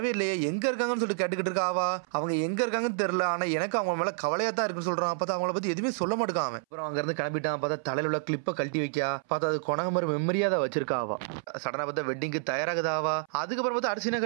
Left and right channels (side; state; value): left; silent; 59 dB below the other